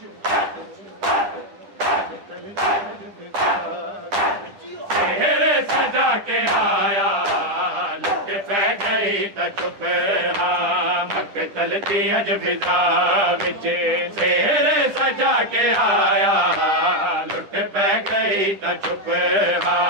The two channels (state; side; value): late; left; 10 ms